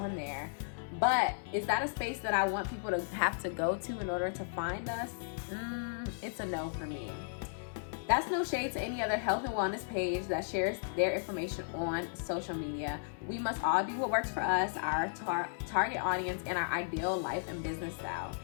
there. But is that a space that I want people to have to go to in order to find us? It's a no for me. That's no shade to any other health and wellness page that shares their information on social media. We must all do what works for us, our target audience, and our ideal life and business style.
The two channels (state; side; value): silent; right; digital silence